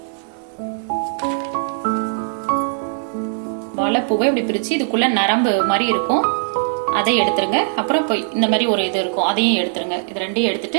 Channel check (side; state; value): left; silent; 66 dB below the other